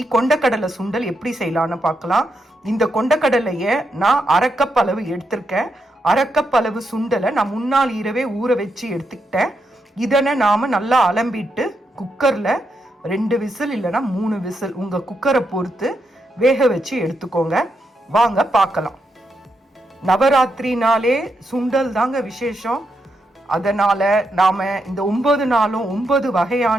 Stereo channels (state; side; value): normal; both; correlation 0.82